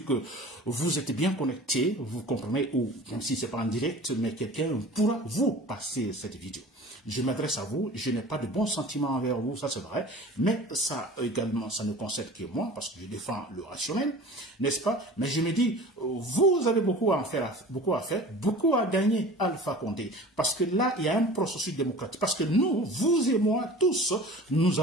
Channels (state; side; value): normal; both; correlation 0.41